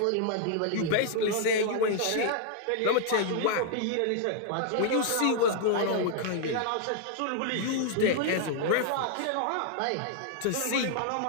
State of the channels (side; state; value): both; different; correlation -0.01